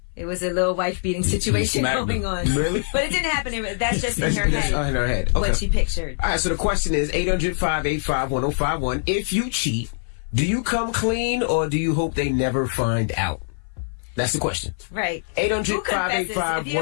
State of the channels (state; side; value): silent; right; 59 dB below the other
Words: It was a little wife-beating situation going on. Really? But it didn't happen. That's just in her head. In her head. Okay. What she pictured. All right, so the question is 800-585-1051. If you cheat, do you come clean or do you hope they never find out? That's the question. Right.